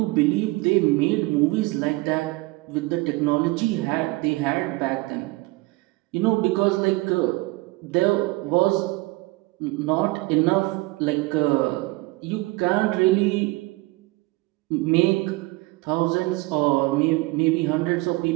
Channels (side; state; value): left; quieter; 22.4 dB